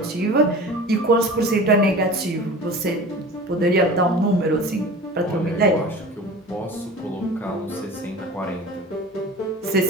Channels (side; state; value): both; normal; correlation 0.37